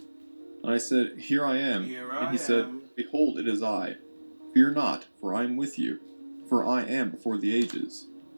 And I said, Here I am. Here And I he said, am. Behold, it is I. Fear not, for I am with you. For I am before the ages,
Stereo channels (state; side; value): inverted; both; correlation -1.00